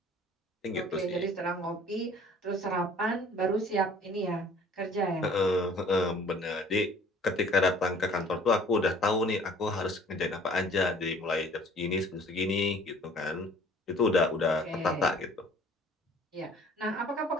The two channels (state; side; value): normal; both; correlation 0.52